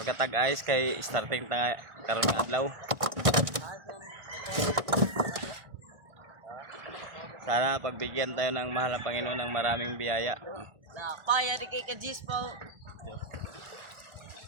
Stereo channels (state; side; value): late; left; 1.5 ms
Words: ayos kay starting tanga karon nga adlaw. Sana pagbigyan tayo ng mahal na Panginoon ng maraming biyaya. Napaya di kay Kajis po.